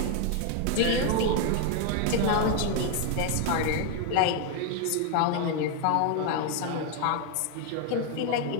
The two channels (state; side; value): different; both; correlation 0.01